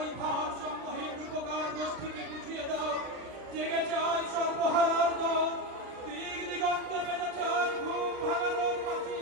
ভার সমূহীন উপকার গোষ্ঠীকে বুঝিয়ে দাও জেগেছে আজ সর্বহারার দল দিক দিগন্তে বেজেছে আজ ঘুম ভাঙানোর বাঁচি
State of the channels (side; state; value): left; late; 40 ms